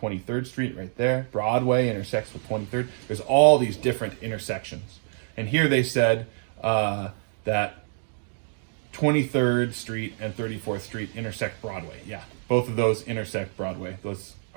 Street right there. Broadway intersects with 23rd. There's all these different intersections. And here they said that 23rd Street and 34th Street intersect Broadway. Yeah, both of those intersect Broadway. Those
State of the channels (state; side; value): silent; left; 61 dB below the other